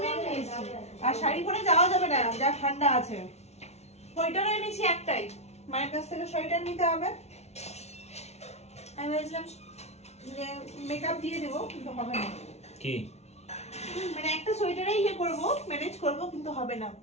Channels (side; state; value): right; late; 0.31 ms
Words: নিয়ে এসেছি। আর শাড়ি পরে যাওয়া যাবে না, যা ঠান্ডা আছে। সোয়েটারও এনেছি একটাই, মায়ের কাছ থেকে সোয়েটার নিতে হবে। আমি ভেবেছিলাম যে মেকআপ দিয়ে দেবো, কিন্তু হবে না। কি মানে একটা সোয়েটারেই ইয়ে করবো, ম্যানেজ করবো, কিন্তু হবে না।